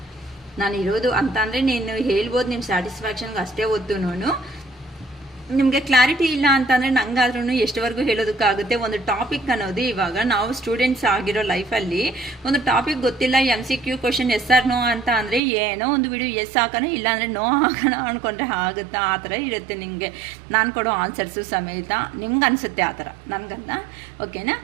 ನಾನು ಇರೋದು ಅಂತ ಅಂದರೆ ನೀನು ಹೇಳ್ಬೋದು ನಿಮ್ಮ ಸ್ಯಾಟಿಸ್ಫ್ಯಾಕ್ಷನ್ಗೆ ಅಷ್ಟೇ ಹೊತ್ತು ನಿಮಗೆ ಕ್ಲಾರಿಟಿ ಇಲ್ಲ ಅಂತಂದರೆ ನಂಗಾದ್ರೂ ಎಷ್ಟುವರೆಗೂ ಹೇಳೋದಕ್ಕಾಗುತ್ತೆ. ಒಂದು ಟಾಪಿಕ್ ಅನ್ನೋದು ಇವಾಗ ನಾವು ಸ್ಟೂಡೆಂಟ್ಸ್ ಆಗಿರೋ ಲೈಫಲ್ಲಿ ಒಂದು ಟಾಪಿಕ್ ಗೊತ್ತಿಲ್ಲ, MCQ question yes or no ಅಂತ ಅಂದರೆ ಏನೋ ಒಂದು ವಿಡಿಯೋ ಎಸ್ ಹಾಕೋಣ ಇಲ್ಲಾಂದರೆ ನೋ ಹಾಕೋಣ ಅಂದ್ಕೊಂಡ್ರೆ ಆಗುತ್ತಾ, ಆ ಥರ ಇರುತ್ತೆ ನಿಮಗೆ ನಾನು ಕೊಡೋ ಆನ್ಸರ್ಸು ಸಮೇತ. ನಿಮ್ಗೆ ಅನಿಸುತ್ತೆ ಆ ಥರ, ನನಗಲ್ಲ. ಓಕೆನಾ?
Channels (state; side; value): drops out; left; at 15.4 s